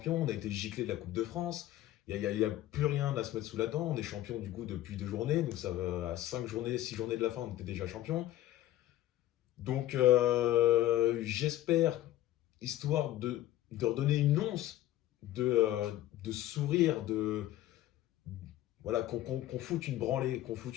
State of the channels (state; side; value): quieter; right; 14.1 dB